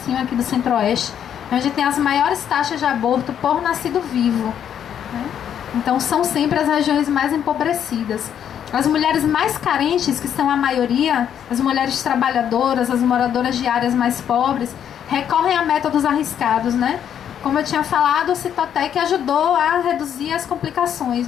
aqui do Centro-Oeste, onde tem as maiores taxas de aborto por nascido vivo, né? Então são sempre as regiões mais empobrecidas. As mulheres mais carentes, que são a maioria, as mulheres trabalhadoras, as moradoras de áreas mais pobres, recorrem a métodos arriscados, né? Como eu tinha falado, o Citotec ajudou a reduzir as complicações,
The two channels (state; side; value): quieter; right; 9.2 dB